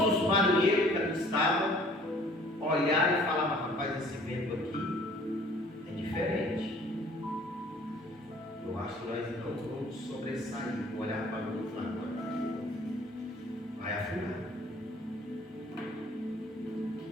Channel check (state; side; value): normal; both; correlation 0.54